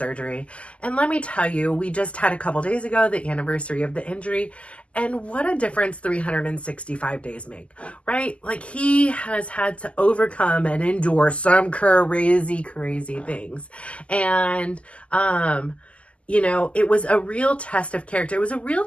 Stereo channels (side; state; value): right; late; 0.060 ms